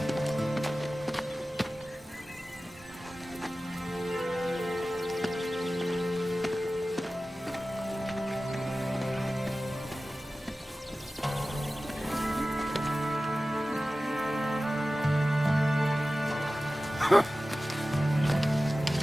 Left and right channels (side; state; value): both; normal; correlation 0.96